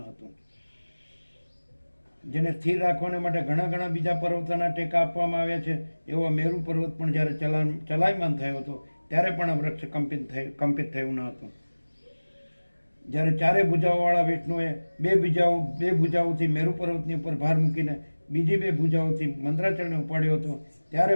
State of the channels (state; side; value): inverted; both; correlation -1.00